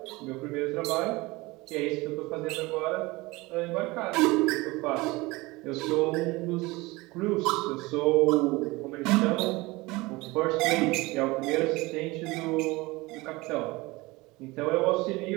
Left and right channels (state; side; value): quieter; left; 22.2 dB